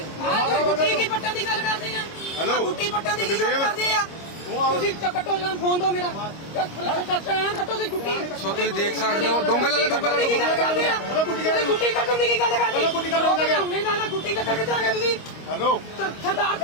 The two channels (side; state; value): right; late; 25 ms